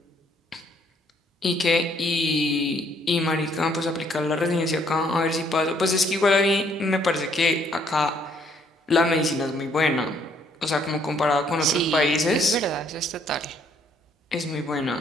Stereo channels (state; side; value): normal; both; correlation 0.66